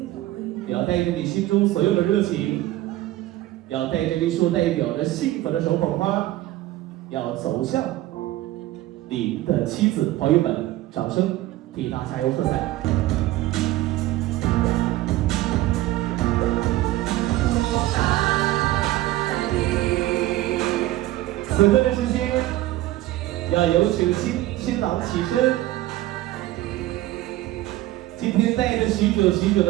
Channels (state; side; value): quieter; left; 16.1 dB